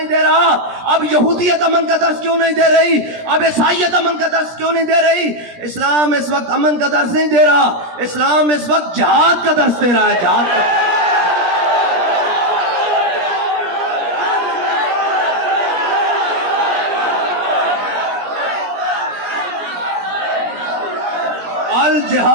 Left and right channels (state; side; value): late; left; 17 ms